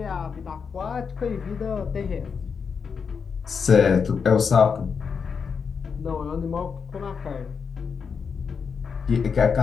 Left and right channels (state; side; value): quieter; right; 6.0 dB